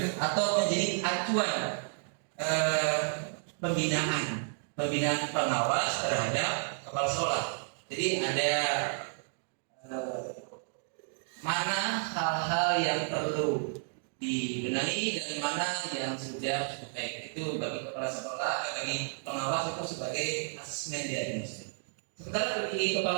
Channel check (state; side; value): silent; left; digital silence